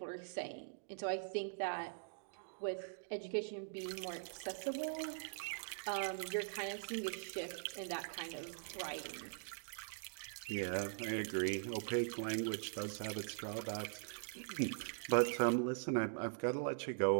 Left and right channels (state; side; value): silent; left; digital silence